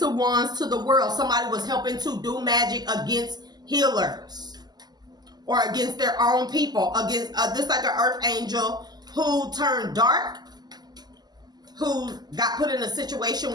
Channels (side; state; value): left; late; 0.20 ms